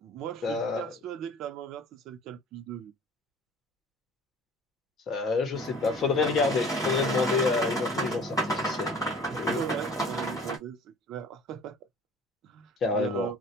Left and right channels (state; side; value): normal; both; correlation 0.46